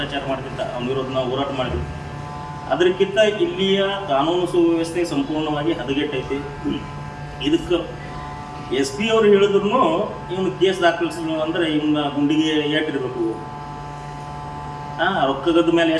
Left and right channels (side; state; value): both; identical; correlation 1.00